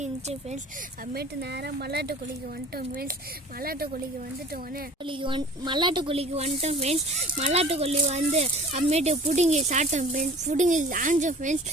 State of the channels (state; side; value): normal; both; correlation 0.46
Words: ஃப்ரெண்ட்ஸ். அப்புறமேட்டு நேராக மல்லாட்டு கொல்லிக்கு வந்துட்டோம் ஃப்ரெண்ட்ஸ். மல்லாட்டு கொல்லிக்கு வந்துட்டோம் ஃப்ரெண்ட்ஸ். மல்லாட்டு கொல்லி வந்து அப்புறமேட்டு பிடுங்கி சாப்பிட்டோம் ஃப்ரெண்ட்ஸ். பிடுங்கி ஆஞ்சோம் ஃப்ரெண்ட்ஸ்.